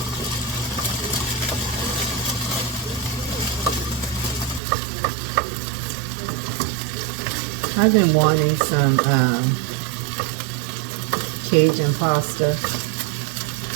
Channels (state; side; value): drops out; left; at 4.6 s